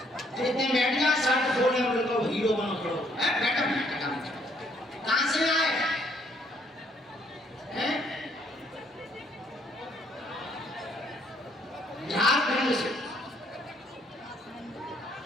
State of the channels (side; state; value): both; normal; correlation 0.67